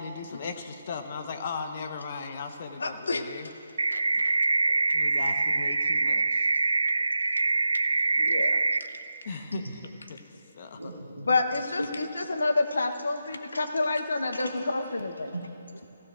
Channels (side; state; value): both; inverted; correlation -0.90